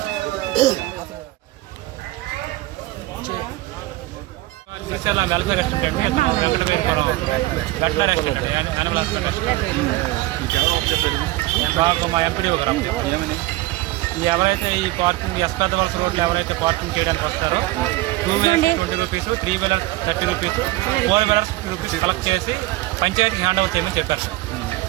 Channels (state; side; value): quieter; left; 18.4 dB